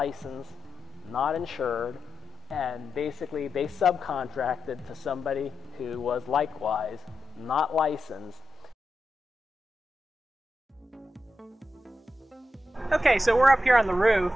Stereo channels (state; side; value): normal; both; correlation 0.89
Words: not insured, and basically they subcontracted to somebody who was likewise not licensed. Okay, so we're up here on the roof,